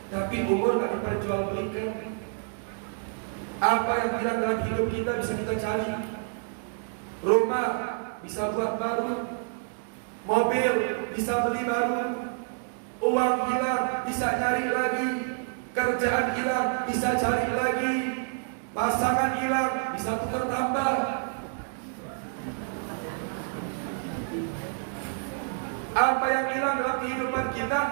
Tapi umur nggak diperjualbelikan. Apa yang hilang dalam hidup kita bisa kita cari. Rumah bisa buat baru, mobil bisa beli baru, uang hilang bisa nyari lagi, kerjaan hilang bisa cari lagi, pasangan hilang bisa tukar tambah. Apa yang hilang dalam kehidupan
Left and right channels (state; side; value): silent; left; 59 dB below the other